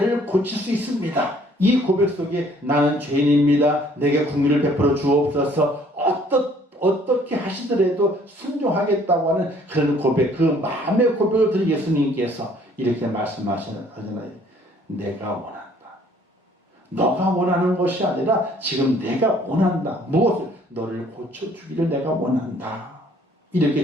고칠 수 있습니다. 이 고백 속에 나는 죄인입니다. 내게 긍휼을 베풀어 주옵소서. 어떻게 하시더라도 순종하겠다고 하는 그런 고백, 그 마음의 고백을 들은 예수님께서 이렇게 말씀하시잖아요. 내가 원한다. 너가 원하는 것이 아니라 지금 내가 원한다. 무엇을? 너를 고쳐주기를 내가 원한다.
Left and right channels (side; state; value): both; normal; correlation 0.59